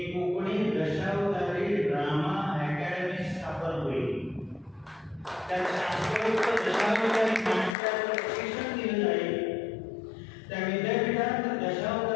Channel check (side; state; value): right; drops out; at 7.8 s